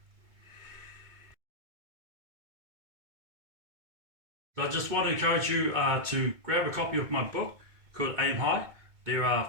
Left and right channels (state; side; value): late; left; 2.2 ms